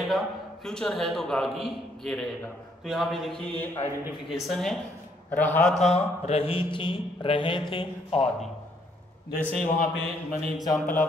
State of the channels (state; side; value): normal; both; correlation 0.69